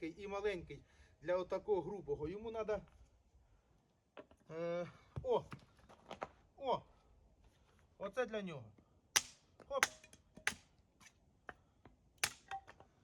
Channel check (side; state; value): both; identical; correlation 1.00